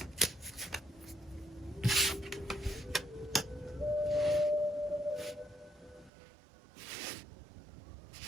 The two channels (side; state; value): left; drops out; at 6.1 s